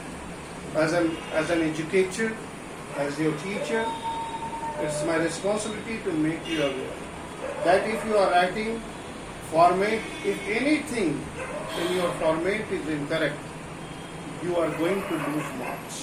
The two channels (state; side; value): identical; both; correlation 1.00